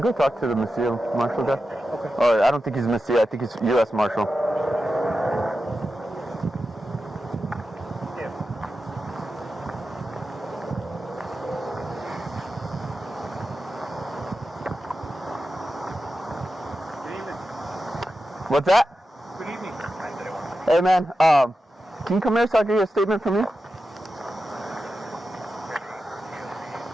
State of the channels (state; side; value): normal; both; correlation 0.91